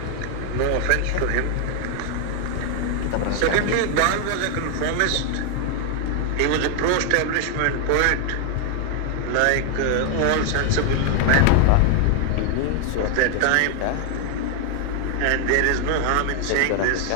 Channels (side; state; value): both; different; correlation 0.00